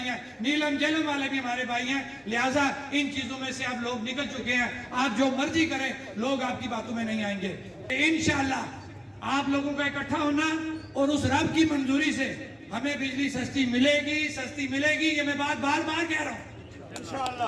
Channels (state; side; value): identical; both; correlation 1.00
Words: ہیں, نیلم جیلم والے بھی ہمارے بھائی ہیں. لہٰذا ان چیزوں میں سے آپ لوگ نکل چکے ہیں. آپ جو مرضی کریں, لوگ آپ کی باتوں میں نہیں آئیں گے. انشاءاللہ آپ لوگوں کا اکٹھا ہونا اور اس رب کی منظوری سے ہمیں بجلی سستی ملے گی. یہ میں بات بار بار کہہ رہا ہوں.